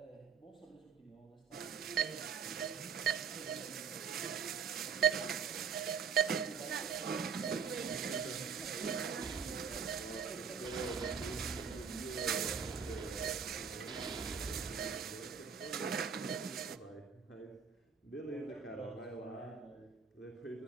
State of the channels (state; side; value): quieter; left; 6.5 dB